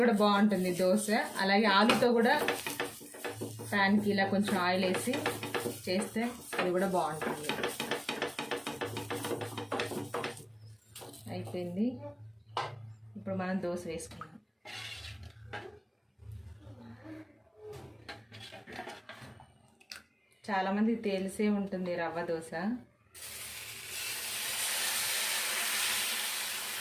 కూడా బాగుంటుంది దోశ. అలాగే ఆలుతో కూడా ప్యాన్కి ఇలా కొంచెం ఆయిల్ వేసి చేస్తే అది కూడా బాగుంటుంది. అయిపోయింది. ఇప్పుడు మనం దోశ వేసుకుందాం. చాలామంది తెలిసే ఉంటుంది రవ్వ దోశ.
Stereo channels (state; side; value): identical; both; correlation 1.00